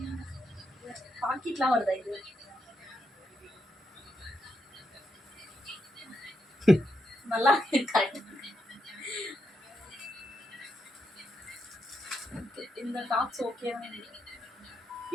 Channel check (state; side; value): normal; both; correlation 0.82